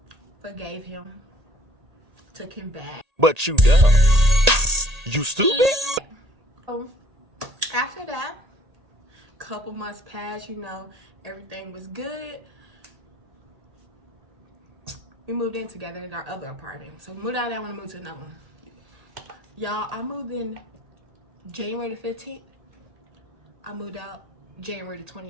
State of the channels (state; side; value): late; left; 1.8 ms